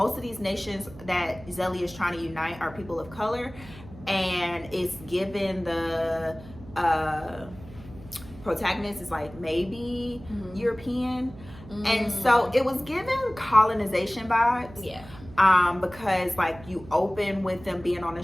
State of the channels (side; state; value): right; noise; hum, 18 dB below the sound